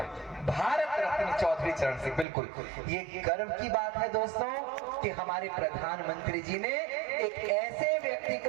भारत रत्न चौधरी चरण सिंह, बिल्कुल। ये गर्व की बात है दोस्तों कि हमारे प्रधानमंत्री जी ने एक ऐसे व्यक्ति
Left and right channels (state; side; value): drops out; left; at 2.2 s